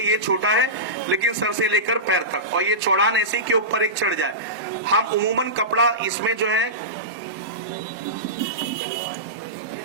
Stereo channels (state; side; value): normal; both; correlation -0.17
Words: ये छोटा है लेकिन सर से लेकर पैर तक, और ये चौड़ान ऐसी के ऊपर एक चढ़ जाए। हम उमूमन कपड़ा इसमें जो है